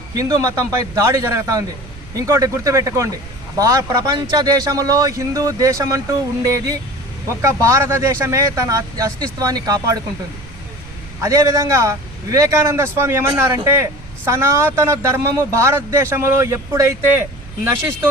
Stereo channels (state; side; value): noise; right; rumble, 17 dB below the sound